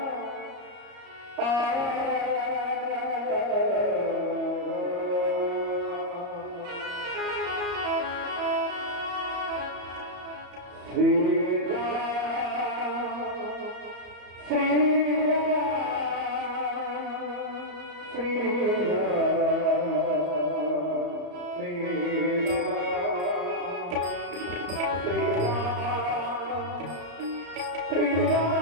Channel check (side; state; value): left; late; 34 ms